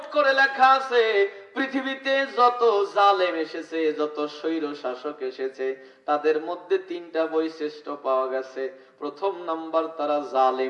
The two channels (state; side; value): identical; both; correlation 1.00